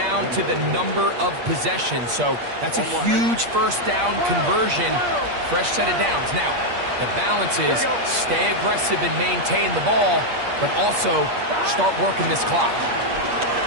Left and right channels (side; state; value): left; late; 8.5 ms